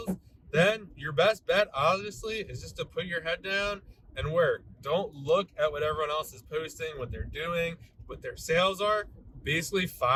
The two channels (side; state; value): both; identical; correlation 1.00